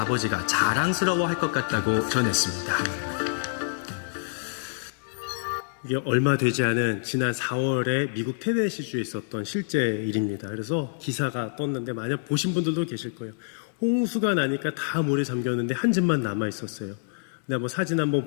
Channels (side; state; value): right; silent; digital silence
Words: 자랑스러워할 것 같다고 전했습니다. 이게 얼마 되지 않은 지난 4월에 미국 테네시주에 있었던 실제 일입니다. 그래서 기사가 떴는데 만약 보신 분들도 계실 거예요. 홍수가 나니까 다 물에 잠겼는데 한 집만 남아 있었어요. 근데 한번 사진 한번